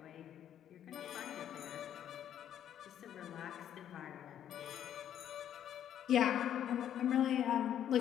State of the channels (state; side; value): quieter; right; 10.2 dB